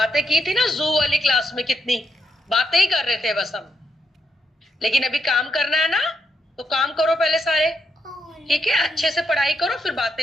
की थी ना, जू वाली क्लास में कितनी बातें ही कर रहे थे बस हम। लेकिन अभी काम करना है ना, तो काम करो पहले सारे, ठीक है। अच्छे से पढ़ाई करो, फिर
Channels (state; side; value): normal; both; correlation 0.79